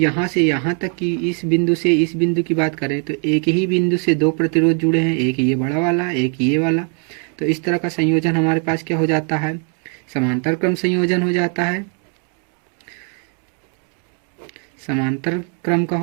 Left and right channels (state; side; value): quieter; left; 39.5 dB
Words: से यहाँ तक की इस बिंदु से इस बिंदु की बात करें तो एक ही बिंदु से दो प्रतिरोध जुड़े हैं, एक ये बड़ा वाला एक ये वाला। तो इस तरह का संयोजन हमारे पास क्या हो जाता है, समांतर क्रम संयोजन हो जाता है, समांतर क्रम का